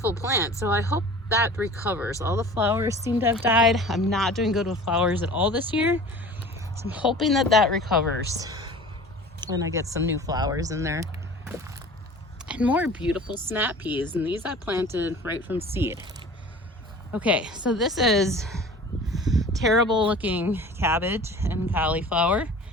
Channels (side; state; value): both; normal; correlation 0.42